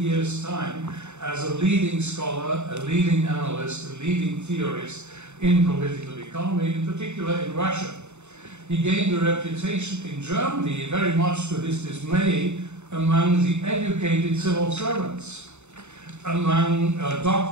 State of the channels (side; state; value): left; late; 0.82 ms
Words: time, as a leading scholar, a leading analyst, a leading theorist in political economy, in particular in Russia. He gained a reputation in Germany, very much to his dismay, among the educated civil servants, among